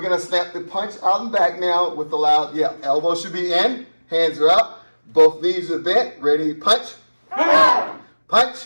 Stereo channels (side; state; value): both; inverted; correlation -1.00